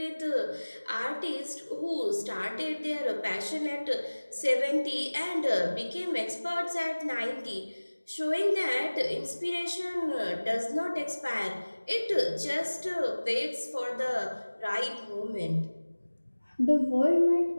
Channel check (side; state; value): both; inverted; correlation -1.00